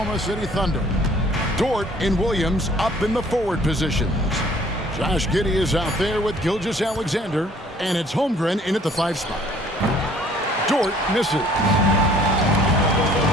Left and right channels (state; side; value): normal; both; correlation 0.57